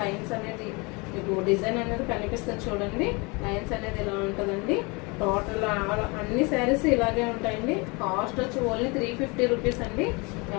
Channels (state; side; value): quieter; right; 28.2 dB